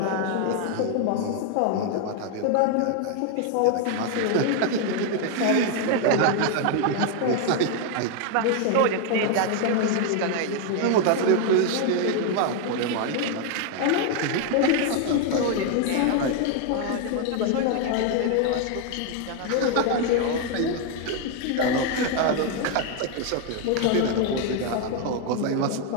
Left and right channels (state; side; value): different; both; correlation 0.01